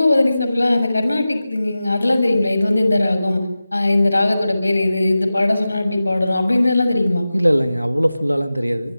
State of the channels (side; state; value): both; inverted; correlation -0.95